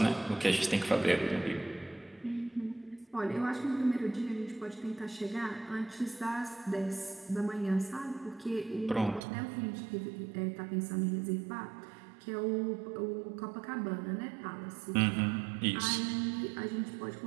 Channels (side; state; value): left; drops out; at 9.2 s